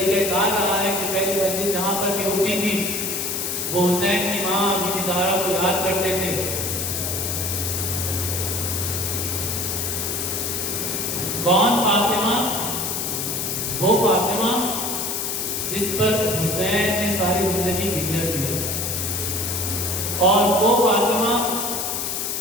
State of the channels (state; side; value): noise; left; hiss, 2 dB below the sound